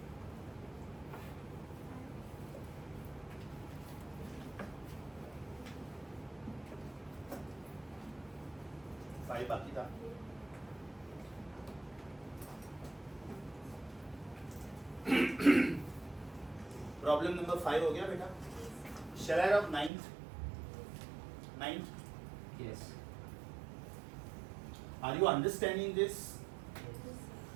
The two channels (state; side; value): drops out; left; at 19.9 s